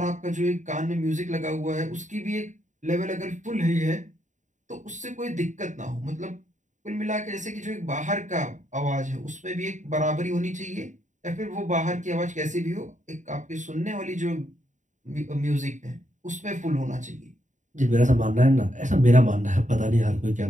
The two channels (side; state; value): left; late; 0.36 ms